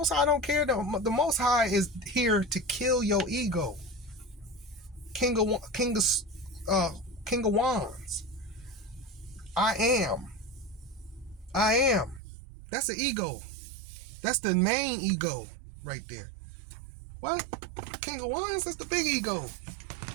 High don't care? The Most High is here to kill your ego. King of Wands. I am. That's the ego. That's the main ego right there. What? King of Wands? That's the big ego.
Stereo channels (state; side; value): drops out; left; at 12.2 s